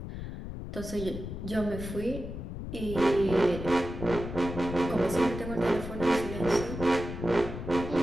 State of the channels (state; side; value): noise; left; rumble, 8 dB below the sound